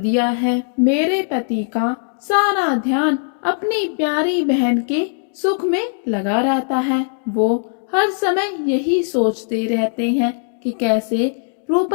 है। मेरे पति का सारा ध्यान अपनी प्यारी बहन के सुख में लगा रहता है। वो हर समय यही सोचते रहते हैं कि कैसे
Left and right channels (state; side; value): silent; right; digital silence